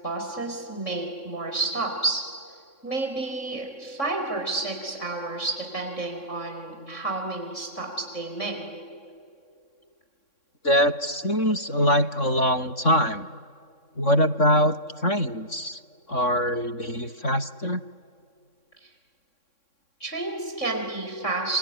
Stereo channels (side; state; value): right; late; 3.6 ms